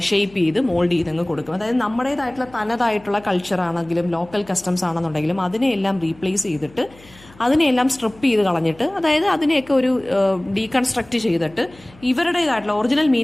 ഷേപ്പ് ചെയ്ത് മോൾഡ് ചെയ്തങ്ങ് കൊടുക്കും. അതായത് നമ്മുടേതായിട്ടുള്ള തനതായിട്ടുള്ള കൾച്ചർ ആണെങ്കിലും ലോക്കൽ കസ്റ്റംസ് ആണെന്നുണ്ടെങ്കിലും അതിനെയെല്ലാം റീപ്ലേസ് ചെയ്തിട്ട് അതിനെയെല്ലാം സ്ട്രിപ്പ് ചെയ്ത് കളഞ്ഞിട്ട്, അതായത് അതിനെയൊക്കെ ഒരു ഡീകൺസ്ട്രക്ട് ചെയ്തിട്ട് ഇവരുടേതായിട്ടുള്ള ഒറിജിനൽ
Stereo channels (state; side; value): noise; left; hum, 25 dB below the sound